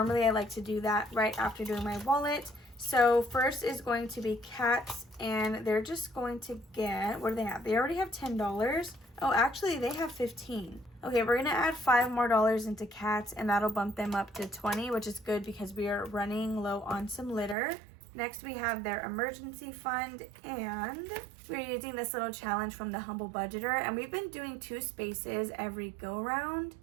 I like to do that right after doing my wallet. So first is going to be cats, and they're just going to get, what do they have? They already have $10. Oh, actually they have 15. Okay, we're gonna add $5 more into cats, and that'll bump them up to 20, which is good because we are running low on some litter. Next, we have their emergency fund, and we're using this little challenge from the Humble Budgeter, and we've been doing 2 spaces every go round.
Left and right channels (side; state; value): left; drops out; at 17.6 s